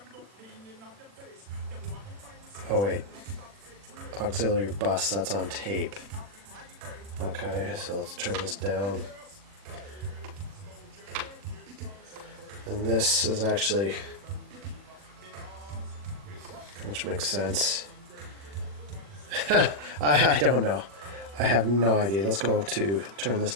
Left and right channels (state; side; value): late; left; 40 ms